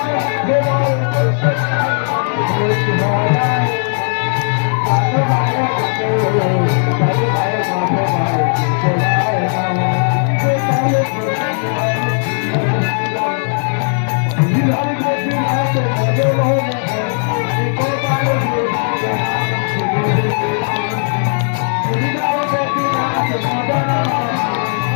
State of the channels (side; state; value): right; silent; 62 dB below the other